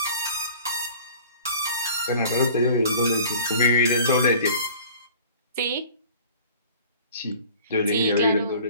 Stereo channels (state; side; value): inverted; both; correlation -0.47